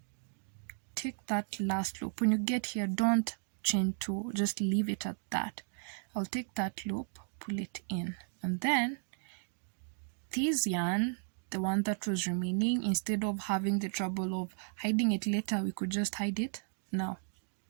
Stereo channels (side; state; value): left; silent; 55 dB below the other